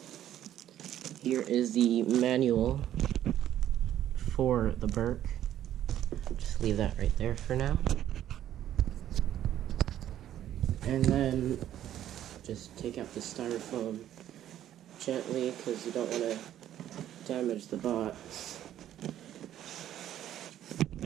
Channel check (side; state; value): left; quieter; 11.7 dB